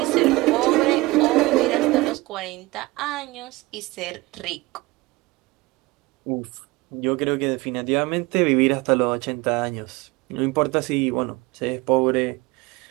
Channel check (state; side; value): quieter; left; 21.4 dB